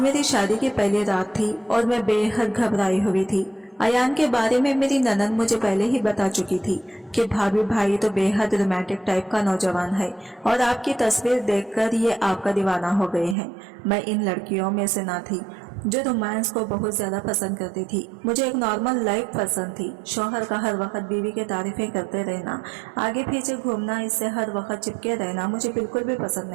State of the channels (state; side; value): drops out; left; at 13.4 s